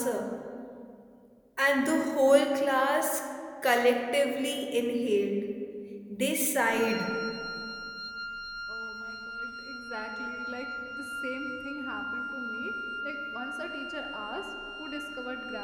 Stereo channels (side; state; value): both; identical; correlation 1.00